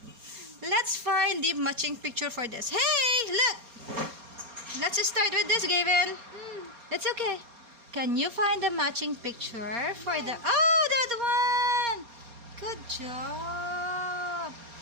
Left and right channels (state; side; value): late; left; 4.3 ms